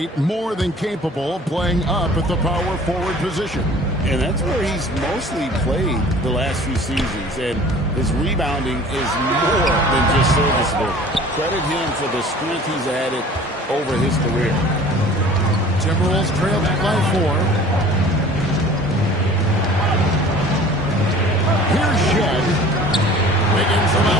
more than capable of playing up at the power forward position. And that's where he's mostly played the last few seasons. And his rebounding is more than just serviceable. Credit him for the strength he's added over his career. Timberwolves trail back by 4. Here's Shed. Wiggins from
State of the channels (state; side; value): normal; both; correlation 0.46